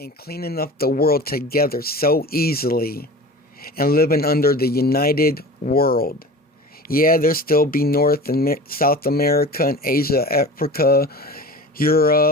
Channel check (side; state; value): both; normal; correlation 0.37